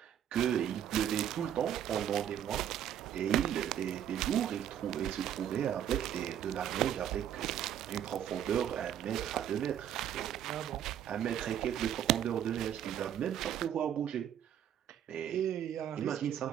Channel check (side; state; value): left; quieter; 10.2 dB